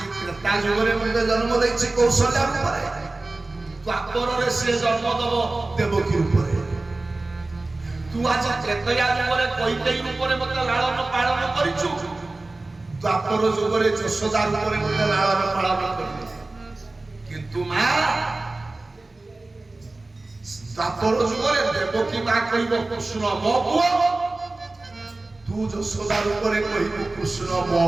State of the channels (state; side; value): quieter; left; 3.1 dB